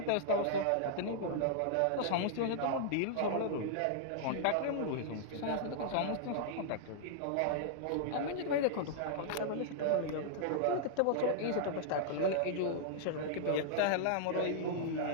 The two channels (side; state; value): both; different; correlation -0.01